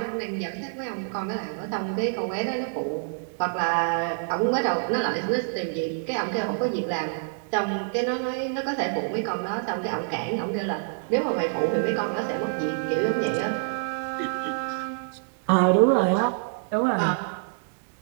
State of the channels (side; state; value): left; silent; digital silence